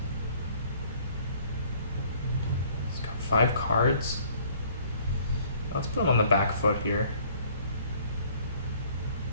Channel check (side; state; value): both; inverted; correlation -0.57